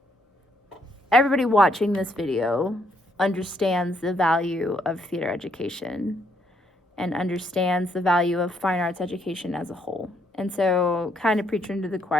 everybody watching this video understands the value of theater education and understands the value of fine arts education as a whole. And so, kind of preaching to the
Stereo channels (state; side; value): normal; both; correlation 0.72